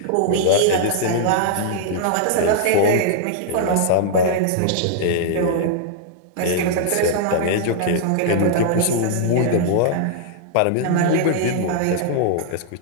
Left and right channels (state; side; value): different; both; correlation -0.01